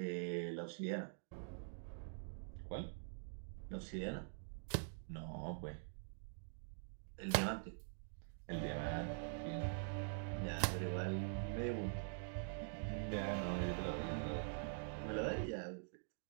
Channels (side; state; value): left; silent; digital silence